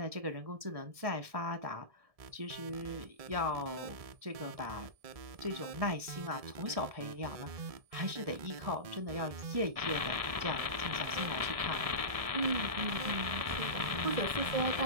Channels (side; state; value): left; late; 1.7 ms